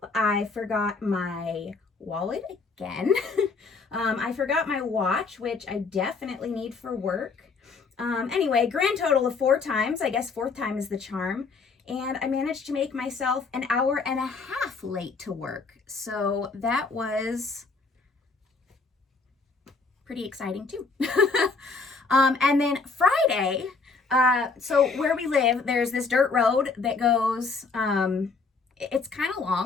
I forgot my wallet again. I forgot my watch, which I definitely need for work. Anyway, grand total of 4 times. I guess 4th time is the charm. And I managed to make myself an hour and a half late to work. So that was pretty exciting too. And then Friday, so where we live, there's this dirt road that goes, it's kind of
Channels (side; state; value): right; quieter; 4.4 dB